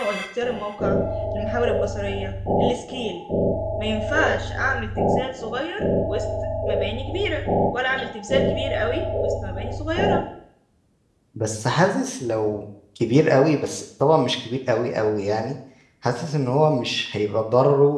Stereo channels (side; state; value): both; identical; correlation 1.00